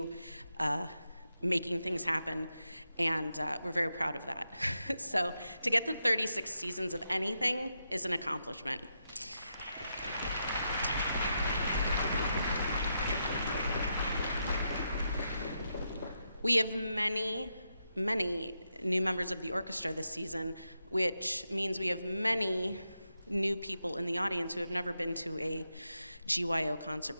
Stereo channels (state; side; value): inverted; both; correlation -0.84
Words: making things happen, and we're very proud of that. So to get to 36 seasons of anything is an accomplishment. We have many new members of the orchestra this season, which means we have many new people in the audience who have never been to a GYO concert